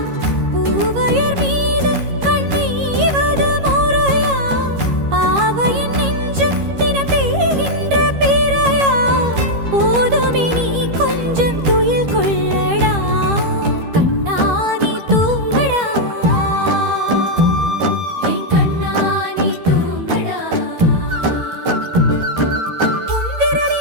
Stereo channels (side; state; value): left; late; 13 ms